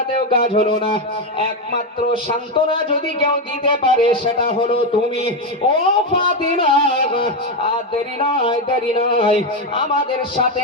কাজ হলো না। একমাত্র সান্ত্বনা যদি কেউ দিতে পারে সেটা হলো তুমি, ও ফাতিমা। আর দেরি নয়, দেরি নয়, আমাদের সাথে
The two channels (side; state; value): both; normal; correlation 0.08